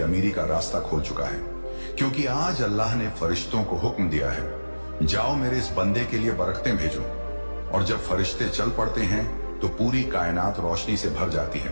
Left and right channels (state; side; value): inverted; both; correlation -1.00